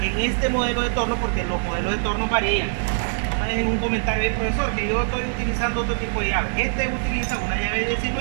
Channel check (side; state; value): left; silent; 63 dB below the other